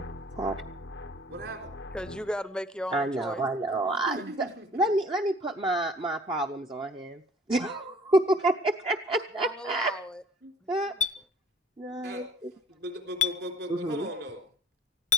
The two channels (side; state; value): both; normal; correlation 0.52